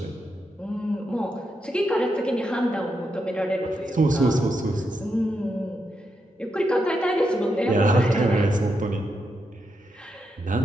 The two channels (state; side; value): normal; both; correlation 0.83